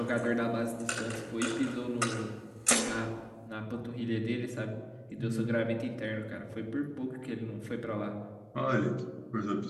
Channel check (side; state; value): both; identical; correlation 1.00